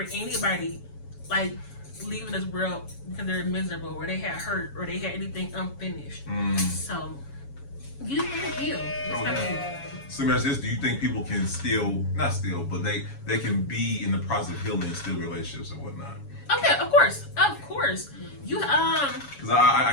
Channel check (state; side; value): late; right; 7.2 ms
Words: anybody like leaving this world because they're miserable, or they had hurt, or they had anything unfinished. So you need to heal. So let me ask this: do you think people can but they can be in the process of healing and still relationships and whatnot? Okay, of course. You because